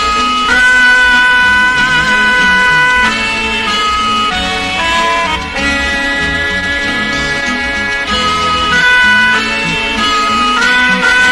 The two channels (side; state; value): both; identical; correlation 1.00